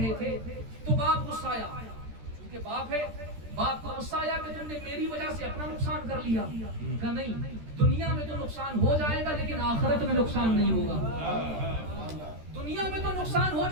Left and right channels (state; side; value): late; left; 13 ms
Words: تھے. تو باپ غصہ آیا, چونکہ باپ ہے, باپ کو غصہ آیا کہ تم نے میری وجہ سے اپنا نقصان کر لیا. کہا نہیں, دنیا میں تو نقصان ہو جائے گا لیکن آخرت میں نقصان نہیں ہوگا. دنیا میں تو نقصان ہو